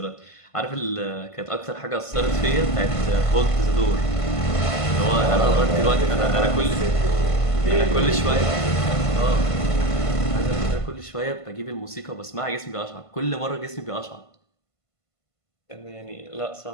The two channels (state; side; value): late; right; 1.5 ms